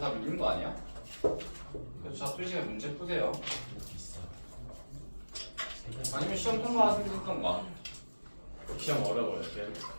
밀린 거 아니야? 그래서 자, 2시간 문제 푸세요. 아니면 시험 통과하시면 됐던가. 시험 어려워요.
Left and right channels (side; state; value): both; inverted; correlation -1.00